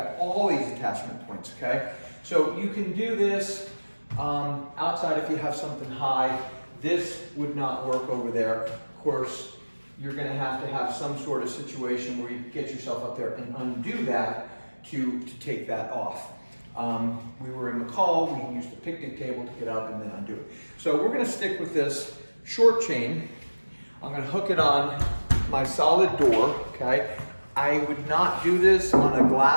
all these attachment points, okay? So you can do this outside if you have something high. This would not work over there. Of course, you're gonna have to have some sort of situation where you get yourself up there and undo that to take that off. We were in McCall, we used a picnic table to get up and then undo it. So we're gonna stick with this short chain. I'm gonna hook it on my solid door, okay? I would not do this on a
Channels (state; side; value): inverted; both; correlation -1.00